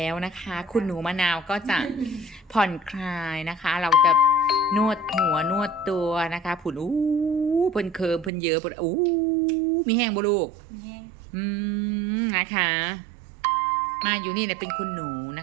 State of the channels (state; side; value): drops out; left; at 8.3 s